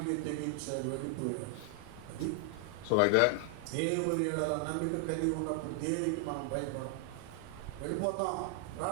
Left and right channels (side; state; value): both; different; correlation 0.00